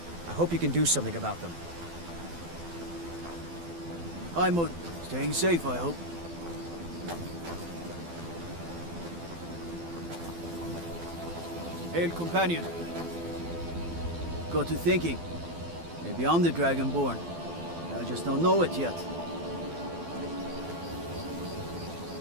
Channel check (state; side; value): late; left; 12 ms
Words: I hope you can do something about them. I'm staying safe, I hope. Hail, companion. Got to thinking. Maybe I'm the Dragonborn. I just don't know it yet.